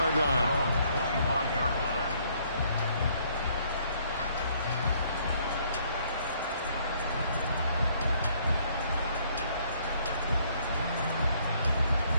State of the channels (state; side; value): inverted; both; correlation -0.65